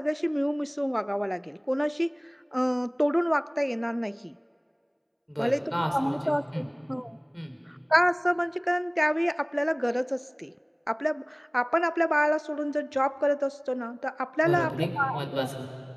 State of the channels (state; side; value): identical; both; correlation 1.00